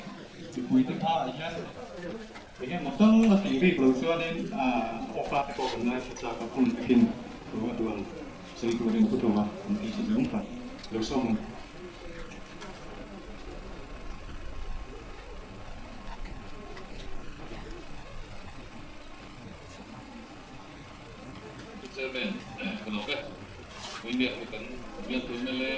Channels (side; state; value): both; identical; correlation 1.00